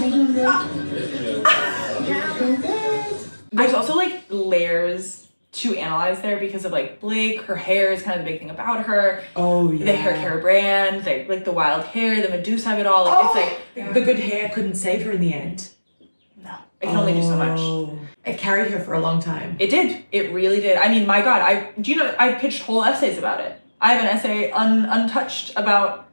There's also like layers to analyze there because of like Blake. Her hair is kind of the big thing about her. Oh yeah. The hair care brand, like the wild hair, the Medusa of it all. Like, it's like the good hair couldn't save her in the end. no, it can only do so much. It carried her for a long time. It did. It really did. I mean, my God, I've pitched whole essays about it. I have an essay untouched about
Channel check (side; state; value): both; inverted; correlation -1.00